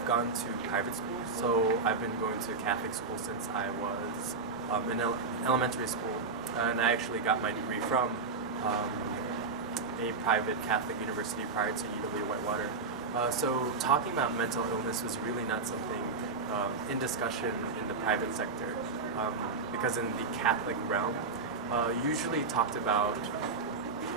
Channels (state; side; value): quieter; left; 4.3 dB